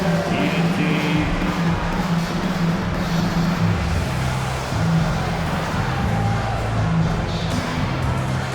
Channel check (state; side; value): identical; both; correlation 1.00